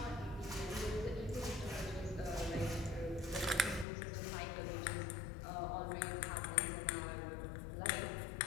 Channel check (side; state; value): right; drops out; at 3.9 s